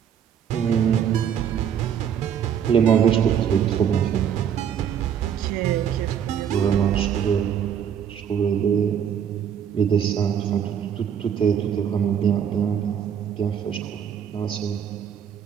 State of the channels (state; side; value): quieter; left; 8.5 dB